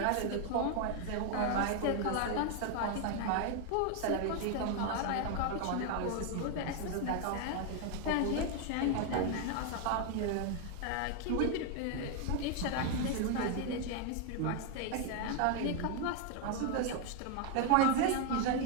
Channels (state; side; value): different; both; correlation 0.01